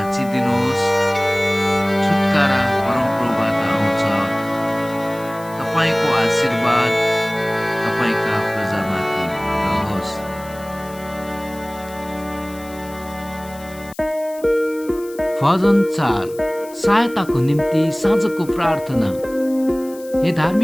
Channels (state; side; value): noise; left; hiss, 21 dB below the sound